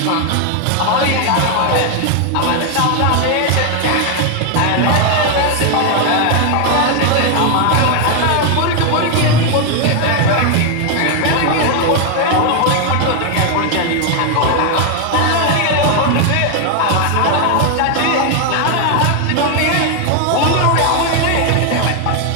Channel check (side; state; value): both; different; correlation 0.01